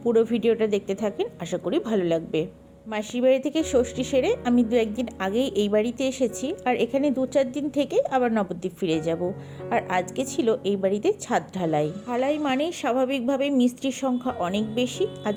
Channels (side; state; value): both; identical; correlation 1.00